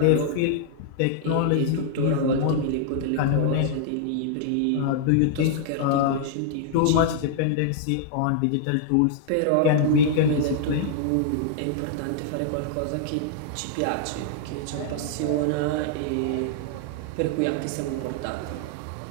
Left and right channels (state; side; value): different; both; correlation -0.01